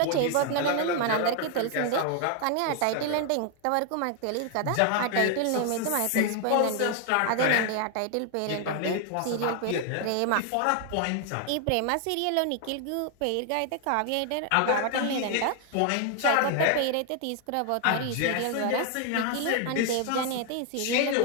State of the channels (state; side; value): different; both; correlation 0.00